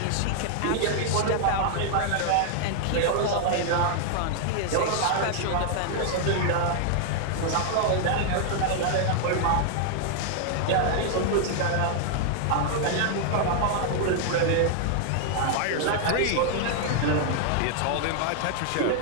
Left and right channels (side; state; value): both; different; correlation 0.00